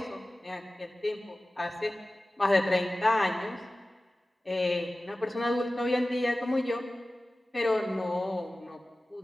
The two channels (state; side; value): normal; both; correlation 0.96